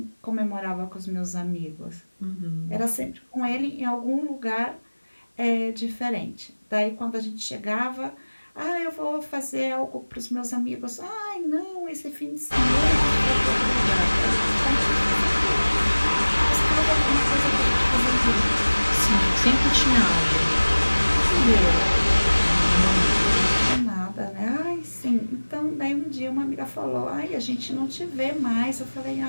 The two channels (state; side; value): inverted; both; correlation -1.00